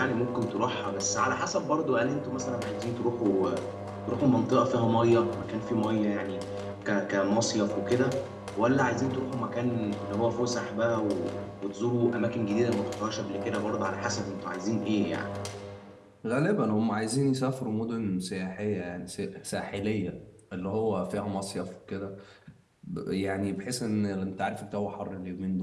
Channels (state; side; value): identical; both; correlation 1.00